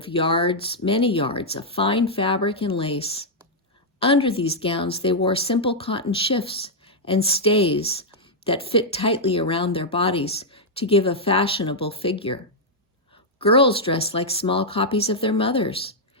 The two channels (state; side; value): normal; both; correlation -0.04